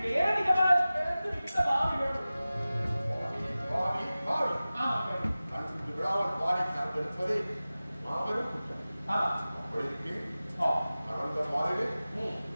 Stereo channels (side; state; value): both; inverted; correlation -0.97